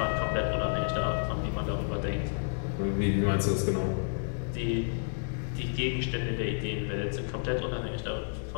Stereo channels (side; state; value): right; silent; digital silence